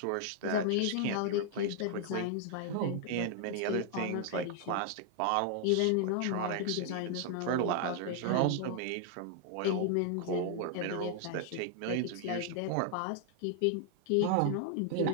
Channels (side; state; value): both; different; correlation 0.00